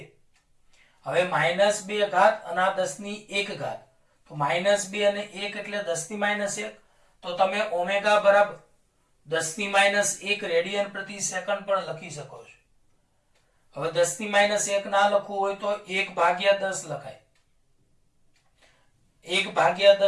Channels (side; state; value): both; identical; correlation 1.00